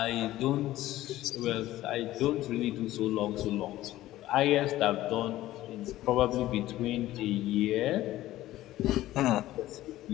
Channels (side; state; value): right; quieter; 15.3 dB